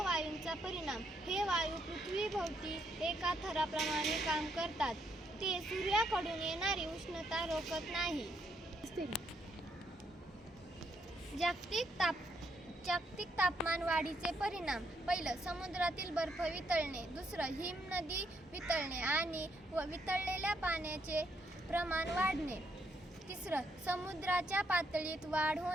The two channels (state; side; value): normal; both; correlation 0.74